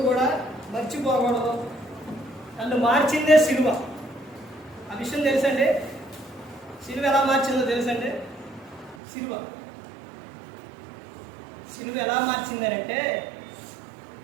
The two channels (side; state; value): left; drops out; at 9.0 s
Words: కూడా మర్చిపోకూడదు. నన్ను మార్చిందే సిలువ. ఆ విషయం తెలుసండి. సిలువ ఎలా మార్చిందో తెలుసండి. సిలువ ఎలా మార్చిందనంటే,